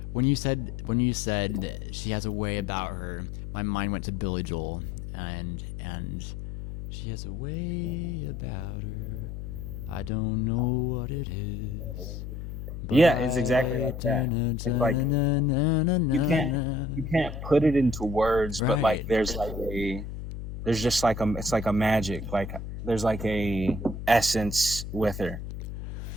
When you said that she has a way about her, my mind went to Billy Joel, and she has a way about her. I don't know what it is, but Yeah, it's exactly I like na that. na It's like, na na na you na can't na. you can't put it into words, but like Right. there's just like a, it's like a magic, like there's like a essence with her.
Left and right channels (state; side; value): noise; left; hum, 8 dB below the sound